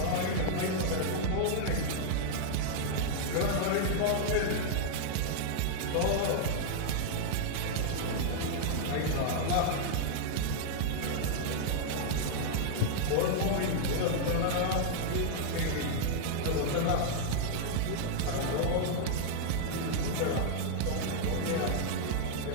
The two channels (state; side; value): different; both; correlation -0.01